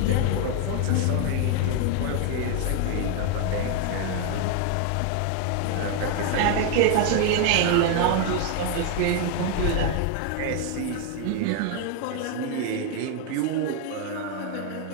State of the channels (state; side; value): different; both; correlation 0.01